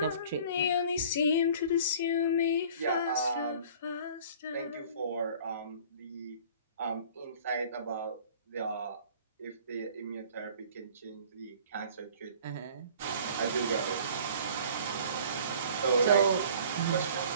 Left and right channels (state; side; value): inverted; both; correlation -0.49